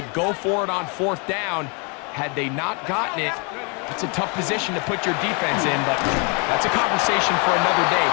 go for it on 4th down, had they not gotten it, it's a tough position to put your defense in, but that's a conversation for another day.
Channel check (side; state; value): right; quieter; 34.1 dB